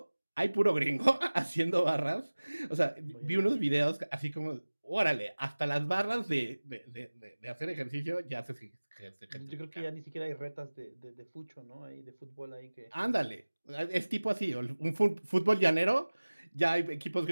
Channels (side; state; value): both; inverted; correlation -1.00